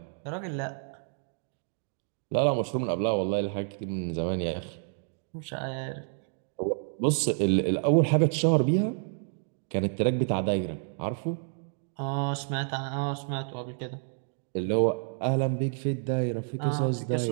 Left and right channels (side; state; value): left; silent; 58 dB below the other